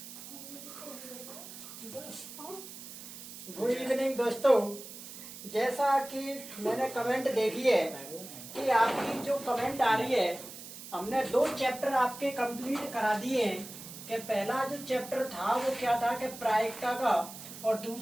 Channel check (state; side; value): noise; right; hiss, 13 dB below the sound